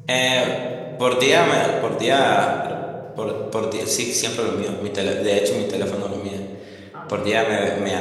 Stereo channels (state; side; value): identical; both; correlation 1.00